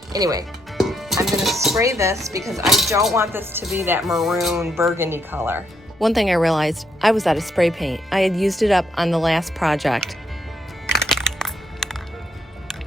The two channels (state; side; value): normal; both; correlation 0.75